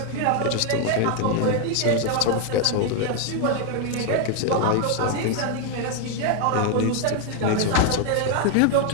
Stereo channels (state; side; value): different; both; correlation 0.01